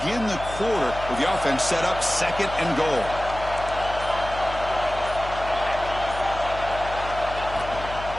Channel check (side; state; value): left; noise; hum, 10 dB below the sound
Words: the quarter with the offense set up second and goal.